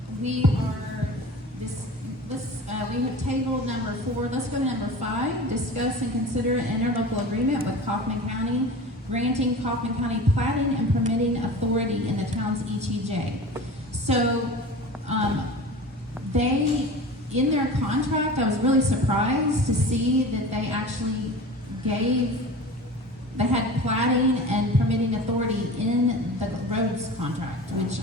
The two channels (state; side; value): normal; both; correlation 0.36